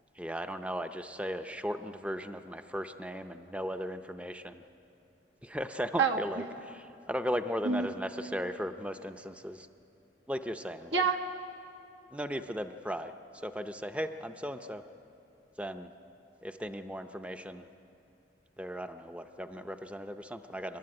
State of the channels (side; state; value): both; normal; correlation 0.59